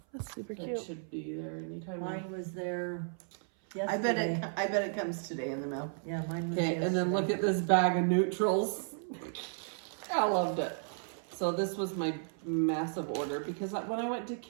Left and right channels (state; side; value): silent; left; 55 dB below the other